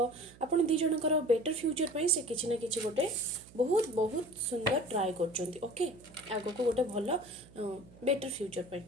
दी जनकर बेटर फ्यूचर पे से किसी ना कि गोटे बहुत बहुत सुंदर ट्राए कर। ओके आग को गोटे भल बेटर फ्यूचर पे।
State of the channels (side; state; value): right; noise; hum, 23 dB below the sound